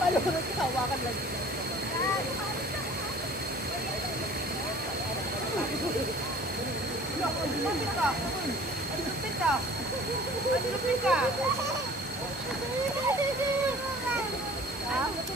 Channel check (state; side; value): normal; both; correlation 0.48